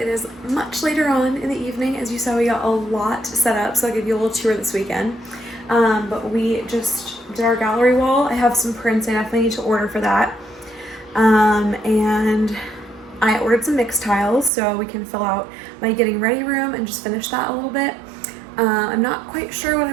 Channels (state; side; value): drops out; left; at 14.5 s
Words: is much later on in the evening. As you saw, we got a lot set up, so I'll give you a little tour this weekend. But we just did our gallery wall. I have some prints I definitely need to order for that. And I ordered some mix tiles so we can fill out my getting ready room and just finish that a little bit. I'm not quite sure what I